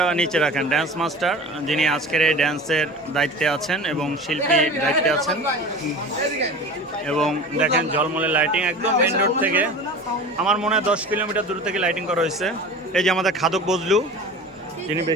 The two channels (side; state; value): both; normal; correlation 0.36